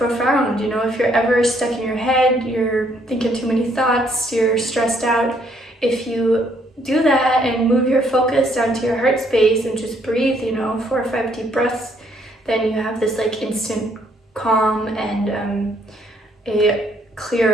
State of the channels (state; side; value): normal; both; correlation 0.68